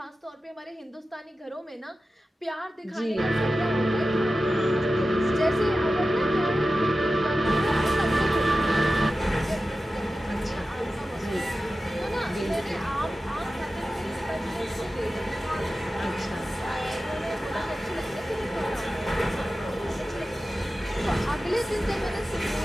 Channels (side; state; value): both; normal; correlation 0.94